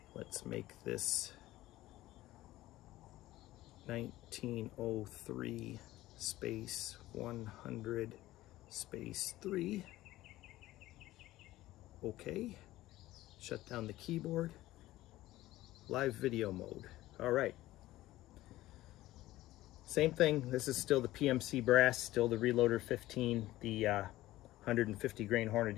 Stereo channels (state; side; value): quieter; right; 16.3 dB